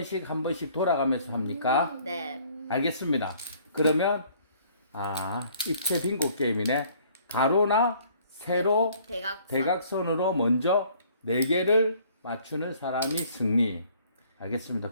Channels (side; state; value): both; inverted; correlation -0.58